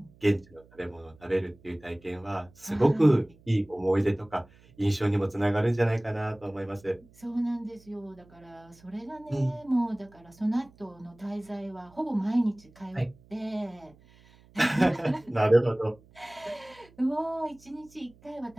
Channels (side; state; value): right; noise; hum, 27 dB below the sound